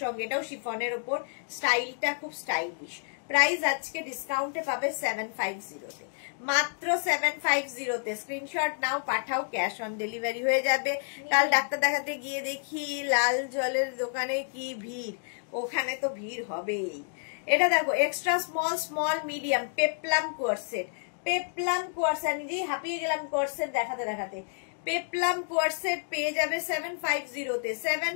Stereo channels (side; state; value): right; silent; digital silence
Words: সঙ্গে। এটাও শিফনের ওপর, স্টাইলটা খুব স্টাইলিশ। প্রাইস আজকে ডিসকাউন্টে পাবে 750 তে, মাত্র 750 তে। স্ক্রিনশট নাও, পাঠাও, ক্যাশ অন ডেলিভারি হয়ে যাবে। কাল ডাক্তার দেখাতে গিয়ে দেখি লাল জলের দোকানে কি ভিড়, ওখানে তো ভিড় হবেই। এটা দেখো extra small medium peplum coord set, peplum coord set. নিজেই হাঁপিয়ে গেলাম কোয়ার্ড সেট দেখাতে। পেপলাম কোয়ার্ড সেট পেয়ে যাবে 750 তে,